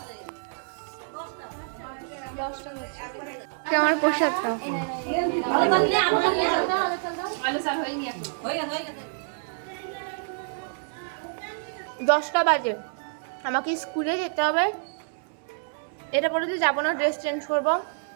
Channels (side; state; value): left; silent; 60 dB below the other